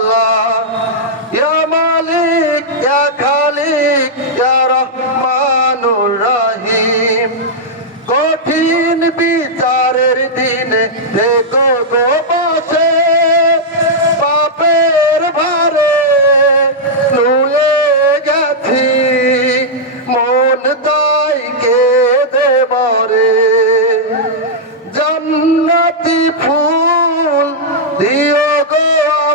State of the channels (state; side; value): normal; both; correlation -0.08